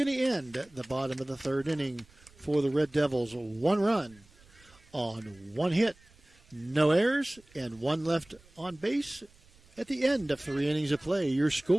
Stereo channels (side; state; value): right; noise; rumble, 28 dB below the sound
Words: to end at the bottom of the third inning for the Red Devils. 1 run on 1 hit, no errors, and 1 left on base at the end of 3 innings of play. Your